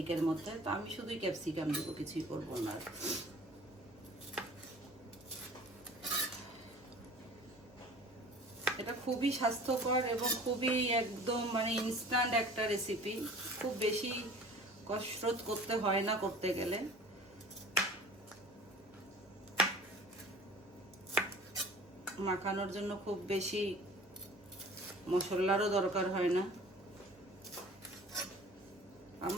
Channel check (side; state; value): both; normal; correlation 0.45